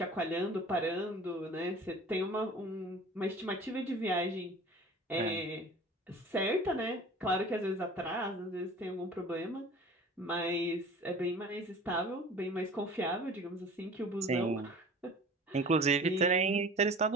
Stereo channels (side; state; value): both; normal; correlation 0.42